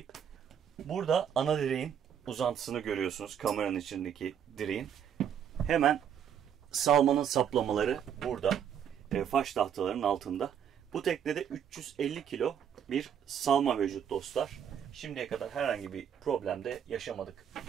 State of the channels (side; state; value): left; quieter; 8.7 dB